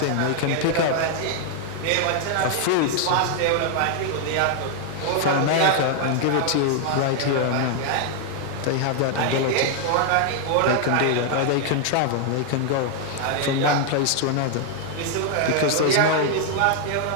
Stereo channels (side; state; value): both; different; correlation 0.00